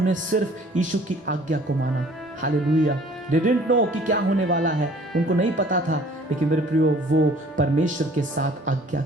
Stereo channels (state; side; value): normal; both; correlation 0.53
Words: सिर्फ यीशु की आज्ञा को माना। हालेलुया। They didn't know कि क्या होने वाला है, उनको नहीं पता था, लेकिन मेरे प्रियो वो परमेश्वर के साथ